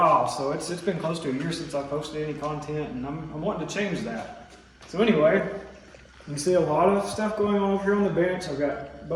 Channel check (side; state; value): both; identical; correlation 1.00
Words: so it's been close to a year since I posted any content, and I'm wanting to change that. So anyway, you can see a lot of stuff going on over here on the bench. I've got